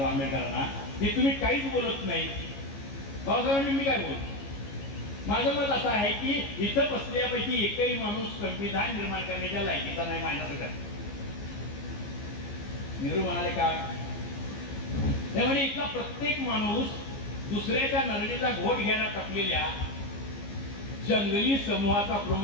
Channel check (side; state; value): right; late; 15 ms